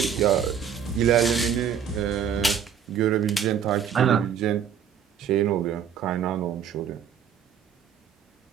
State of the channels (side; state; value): left; quieter; 8.1 dB